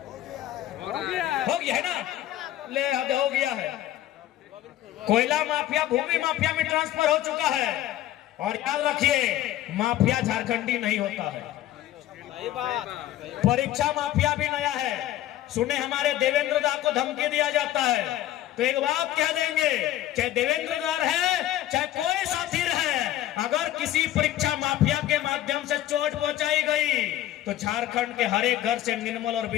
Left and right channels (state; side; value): quieter; right; 13.6 dB